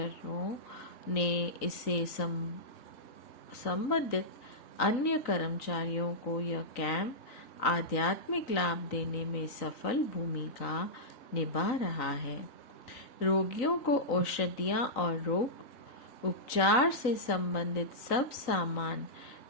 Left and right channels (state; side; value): late; right; 3.9 ms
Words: ने इसे संबंधित अन्य कर्मचारियों को यह कैंप आध्यात्मिक लाभ देने में सफल भूमिका निभा रहा है। रोगियों को औषधियाँ और रोग उपचार से संबंधित सब सामान